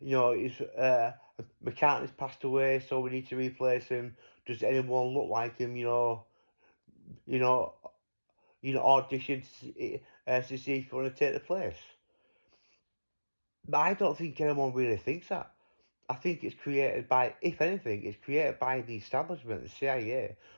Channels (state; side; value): inverted; both; correlation -1.00